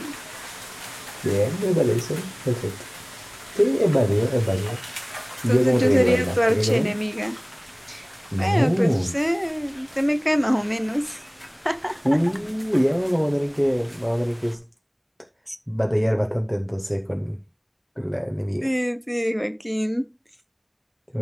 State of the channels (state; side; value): identical; both; correlation 1.00